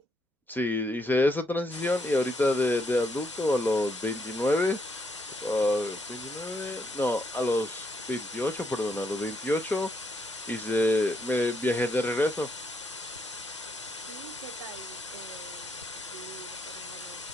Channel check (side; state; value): both; normal; correlation 0.76